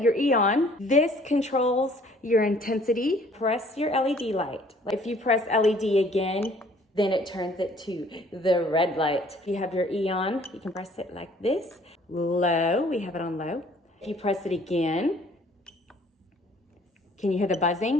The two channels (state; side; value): normal; both; correlation 0.57